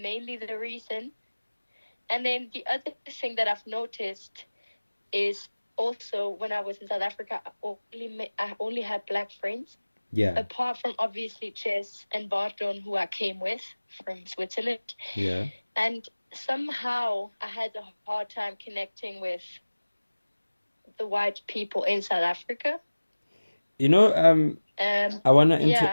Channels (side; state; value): both; inverted; correlation -1.00